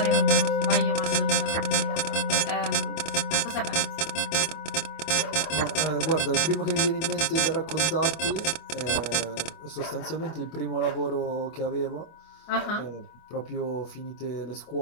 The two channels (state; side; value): late; right; 25 ms